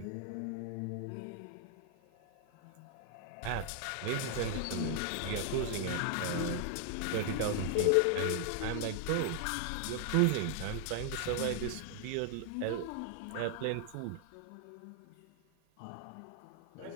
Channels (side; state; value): both; different; correlation 0.00